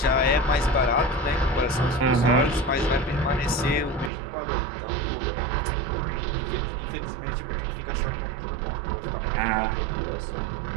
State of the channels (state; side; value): drops out; left; at 4.1 s